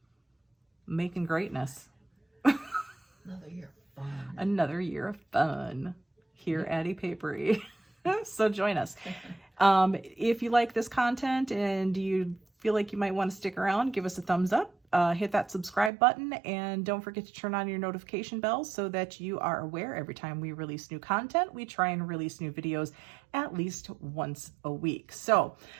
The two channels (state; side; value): drops out; left; at 15.9 s